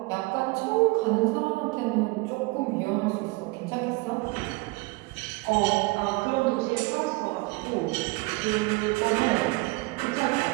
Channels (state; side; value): quieter; left; 25.5 dB